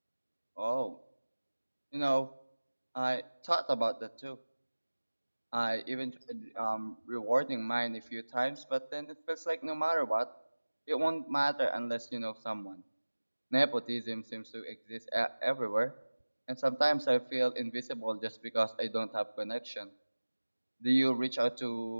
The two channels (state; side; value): inverted; both; correlation -1.00